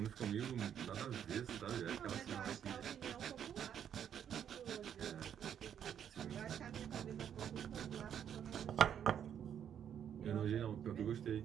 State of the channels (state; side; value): quieter; left; 9.0 dB